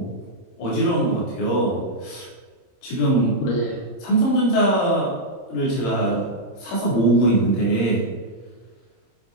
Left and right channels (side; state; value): right; late; 29 ms